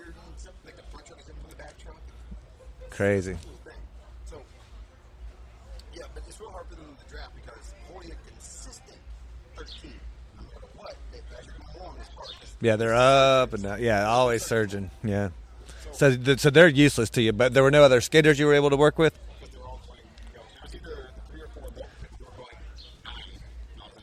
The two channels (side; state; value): both; identical; correlation 1.00